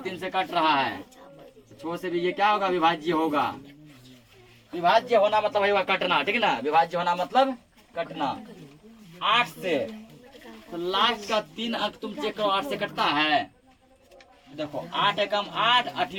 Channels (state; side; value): identical; both; correlation 1.00